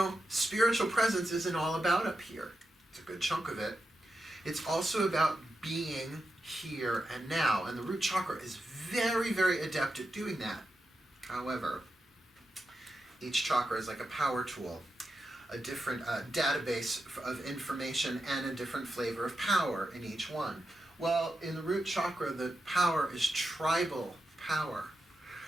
spiritual presence isn't all about up here. It's a good chunk of it. It's also about being here and now. And the root chakra is very, very adept at doing that. However, each chakra is like a power tool, a different database of information and a different flavor of power in each one. Well, in the root chakra, the power is tribal power.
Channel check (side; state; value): both; normal; correlation 0.88